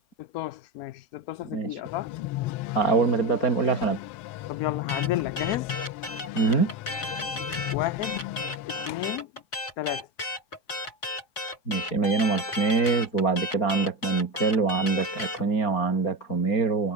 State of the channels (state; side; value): late; right; 4.3 ms